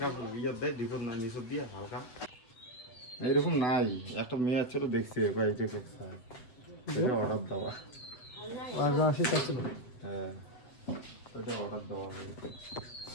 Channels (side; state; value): right; late; 8.2 ms